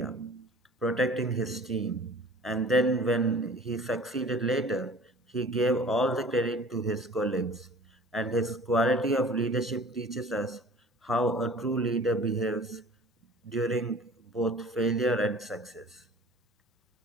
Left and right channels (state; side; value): normal; both; correlation 0.46